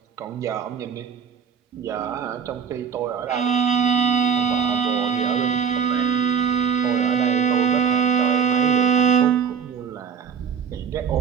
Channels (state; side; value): quieter; left; 7.1 dB